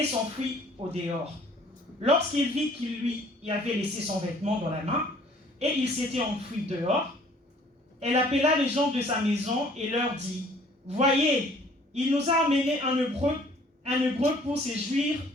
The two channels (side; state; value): both; normal; correlation 0.56